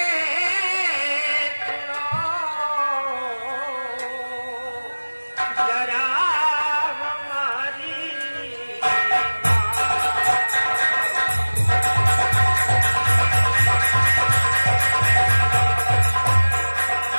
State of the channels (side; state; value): both; inverted; correlation -1.00